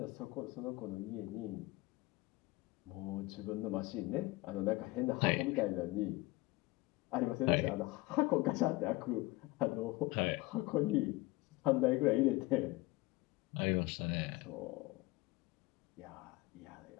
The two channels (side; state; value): right; quieter; 20.8 dB